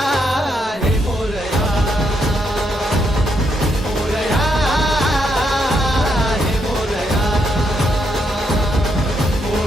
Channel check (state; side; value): normal; both; correlation 0.77